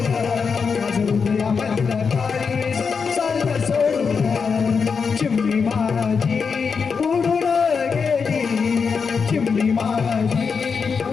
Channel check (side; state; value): right; quieter; 5.6 dB